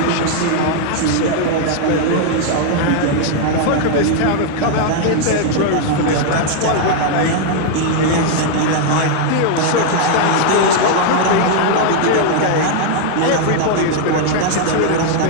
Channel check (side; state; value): both; different; correlation 0.00